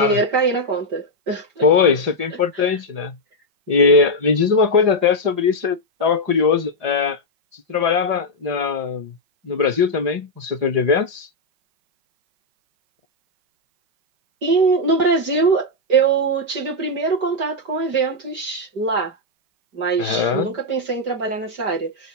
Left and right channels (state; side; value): late; left; 5.4 ms